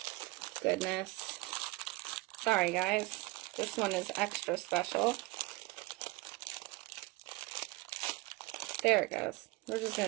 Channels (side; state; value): left; quieter; 22.3 dB